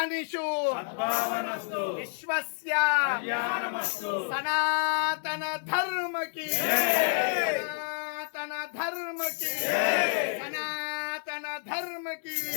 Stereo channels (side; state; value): right; silent; digital silence